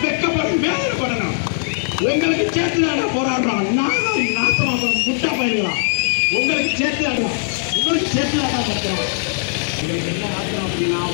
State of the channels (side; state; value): right; silent; digital silence